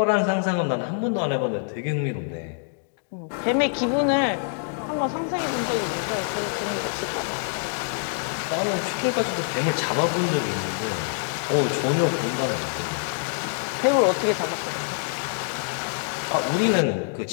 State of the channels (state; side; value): silent; right; digital silence